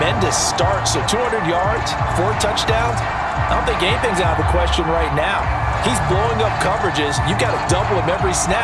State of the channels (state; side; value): identical; both; correlation 1.00